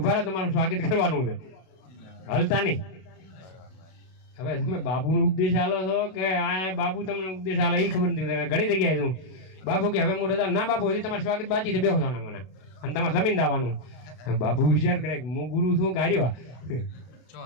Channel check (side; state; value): right; late; 32 ms